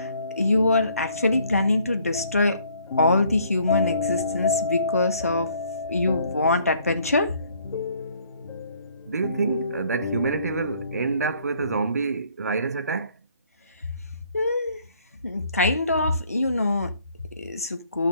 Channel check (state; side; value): inverted; both; correlation -0.63